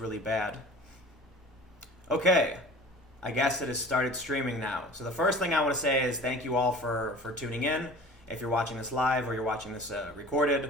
bad. Okay, I guess it has started streaming now. So the first thing I want to say is thank you all for tuning in. If you're watching this live or you're watching this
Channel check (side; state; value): both; normal; correlation 0.43